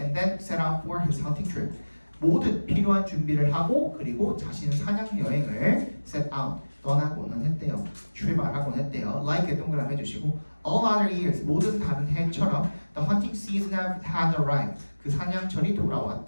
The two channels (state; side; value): inverted; both; correlation -1.00